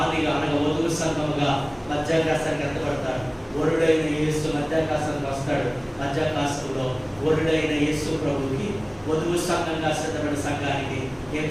అనగా వధువు సంఘముగా మధ్యాకాశానికి ఎత్తబడతాడు. వరుడైన యేసు మధ్యాకాశానికి వస్తాడు. మధ్యాకాశంలో వరుడైన యేసు ప్రభుకి వధువు సంఘంగా సిద్ధపడిన సంఘానికి ఏం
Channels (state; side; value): identical; both; correlation 1.00